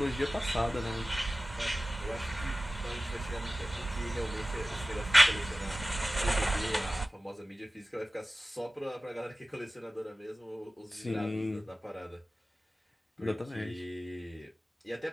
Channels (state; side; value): normal; both; correlation 0.97